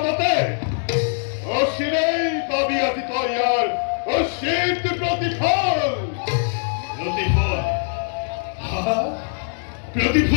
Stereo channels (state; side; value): silent; right; digital silence